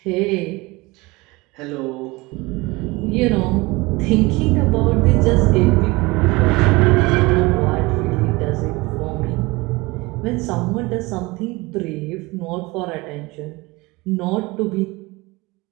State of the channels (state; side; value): quieter; left; 23.2 dB